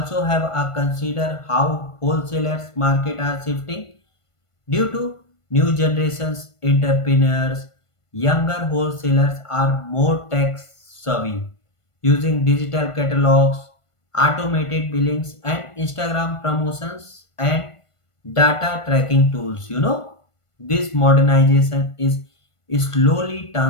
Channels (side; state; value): right; late; 1.5 ms